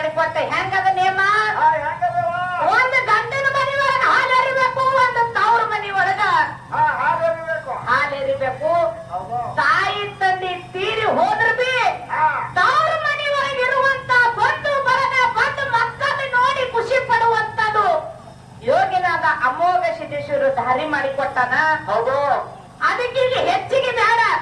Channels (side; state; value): both; identical; correlation 1.00